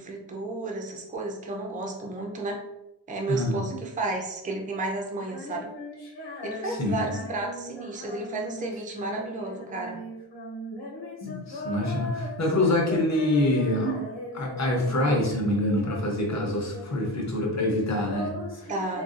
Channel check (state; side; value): normal; both; correlation 0.28